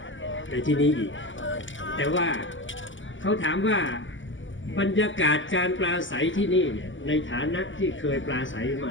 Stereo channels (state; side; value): late; right; 0.55 ms